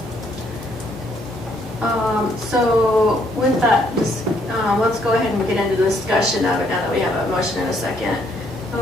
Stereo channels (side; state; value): both; normal; correlation 0.69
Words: So with that, let's go ahead and get into the discussion of it now that we have a motion and a second.